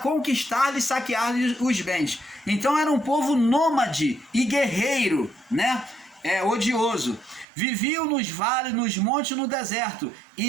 e saquear-lhes os bens. Então, era um povo nômade e guerreiro, né? Odioso. Viviam nos vales, nos montes, no deserto,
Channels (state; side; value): drops out; left; at 7.5 s